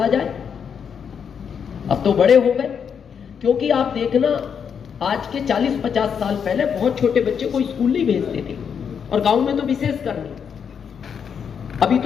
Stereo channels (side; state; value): right; quieter; 7.2 dB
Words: जाए। अब तो बड़े हो गए, क्योंकि आप देखना आज के 40-50 साल पहले बहुत छोटे बच्चे को स्कूल नहीं भेजते थे, और गांव में तो विशेष कर नहीं। अभी